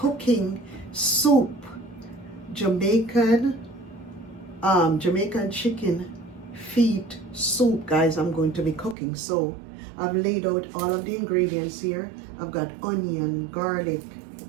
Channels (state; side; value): drops out; left; at 9.0 s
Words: soup, Jamaican chicken feet soup guys. I'm going to be cooking. So I've laid out all of the ingredients here. I've got onion, garlic,